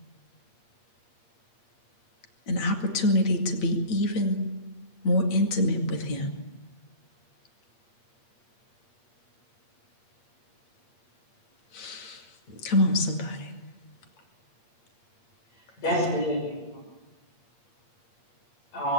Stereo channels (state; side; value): late; right; 8.5 ms